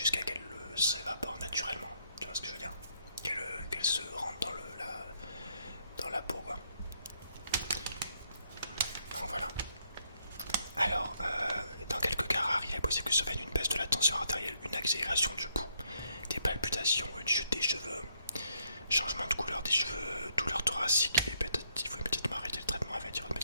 qu'elle s'évapore naturellement. Tu vois ce que je veux dire? Qu'elle se rentre dans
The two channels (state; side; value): inverted; both; correlation -0.73